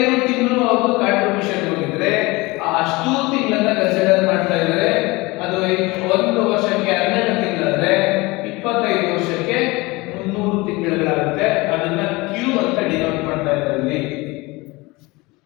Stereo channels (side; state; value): right; quieter; 23.1 dB